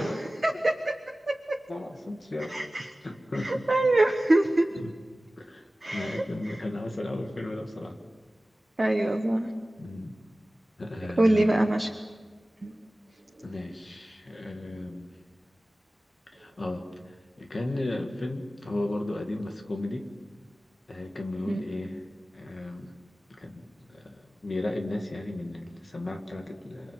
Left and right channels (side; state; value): both; normal; correlation 0.97